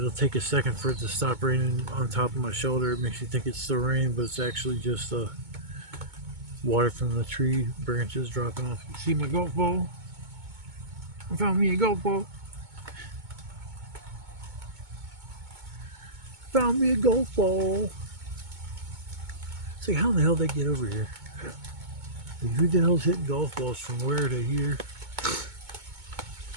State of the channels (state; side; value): late; left; 2.2 ms